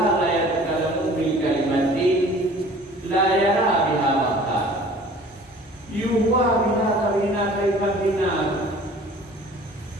la yatakallamu bil kalimatin la yara biha waqta. Yuwa bina kaifatina.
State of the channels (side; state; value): both; normal; correlation 0.48